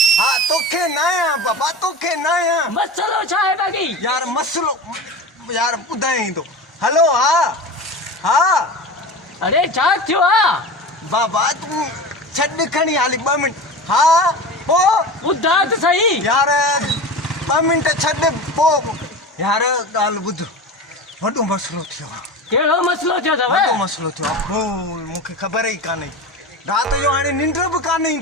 हा तोखे न आया बाबा तोखे न आया मसलो छा है बाकी यार मसलो यार ॿुधाई थो हलो हा हा अरे छा थियो आ बाबा तूं छॾ खणी हाली 2 मिंट हा पो ॿुधा त सही यार 2 मिंट छॾ पो यार ॻाल्हि ॿुध वॾो मसलो थियो आहे केड़ो मसलो थियो अथव वॾो मसलो थियो आहे बोल मूंखे ख़बर ई कान्हे राति जो हाणे निंड बि कान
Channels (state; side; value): normal; both; correlation 0.29